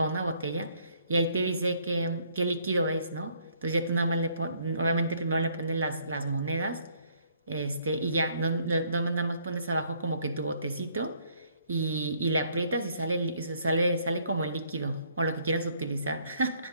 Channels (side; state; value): both; inverted; correlation -0.65